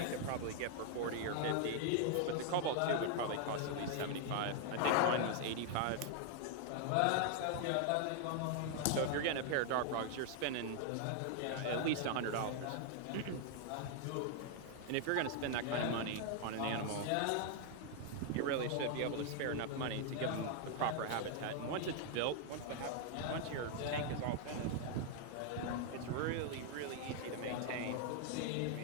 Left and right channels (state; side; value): different; both; correlation 0.00